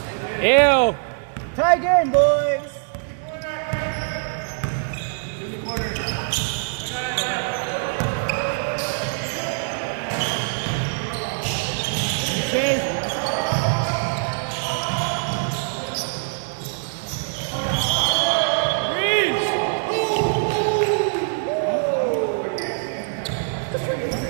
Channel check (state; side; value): silent; left; digital silence